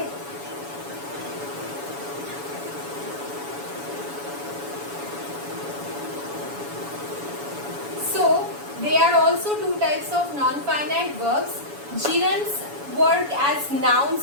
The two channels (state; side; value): late; left; 7.1 ms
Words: So there are also two types of non-finite verbs. Gerunds work as